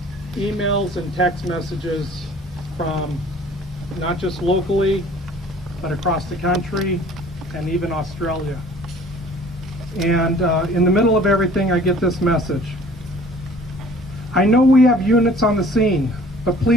emails and text messages from not just locally, but across the country, and even Australia. And in the middle of everything, I get this message. I know we have units on the scene, but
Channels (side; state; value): both; normal; correlation 0.51